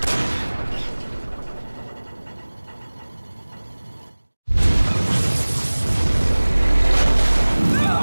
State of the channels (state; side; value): inverted; both; correlation -1.00